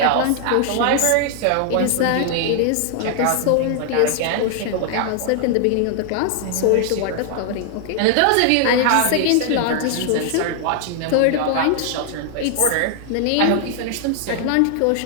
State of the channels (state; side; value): different; both; correlation 0.00